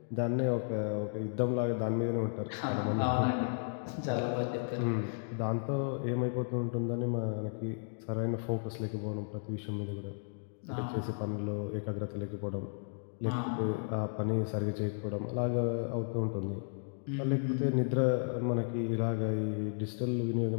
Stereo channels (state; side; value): silent; right; digital silence